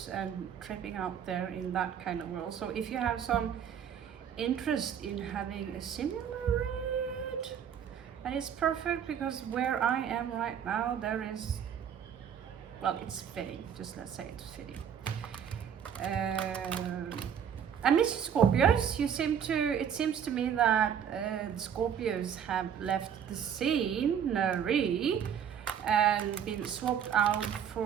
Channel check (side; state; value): left; quieter; 8.4 dB